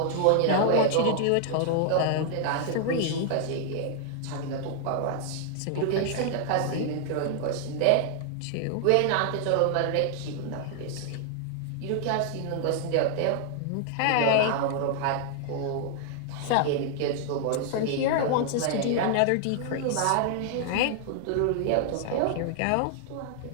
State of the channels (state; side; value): different; both; correlation 0.00